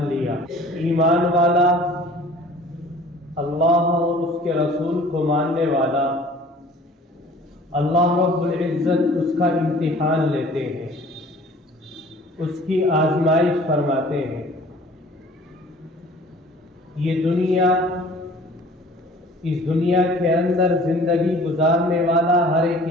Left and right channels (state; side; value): normal; both; correlation 0.49